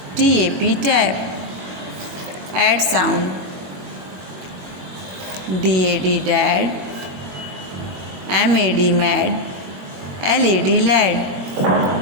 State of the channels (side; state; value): left; late; 21 ms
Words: TAP, tap. Add sound. DAD dad, MAD mad, LAD lad.